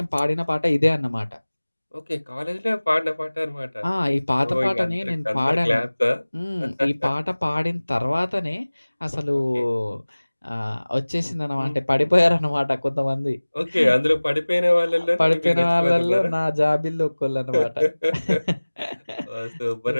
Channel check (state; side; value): inverted; both; correlation -1.00